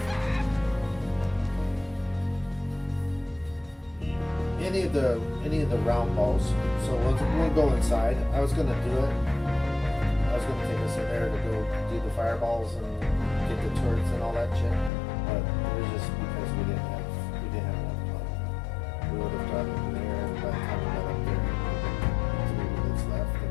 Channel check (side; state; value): right; drops out; at 14.9 s